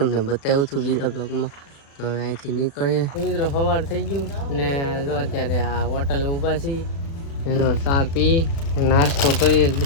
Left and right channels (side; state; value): right; late; 36 ms